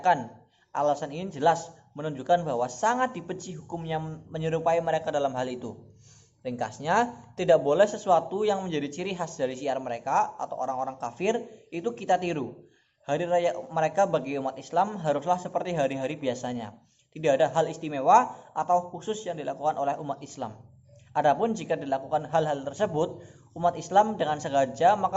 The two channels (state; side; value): identical; both; correlation 1.00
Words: Alasan ini jelas menunjukkan bahwa sangat dibenci hukumnya menyerupai mereka dalam hal itu. Ringkasnya, tidak boleh sesuatu yang menjadi ciri khas dari syiar mereka atau orang-orang kafir itu kita tiru. Hari raya mereka bagi umat Islam haruslah seperti hari-hari biasanya. Tidak ada hal istimewa atau khusus yang dilakukan oleh umat Islam. Adapun jika dilakukan hal-hal tersebut umat Islam dengan sengaja,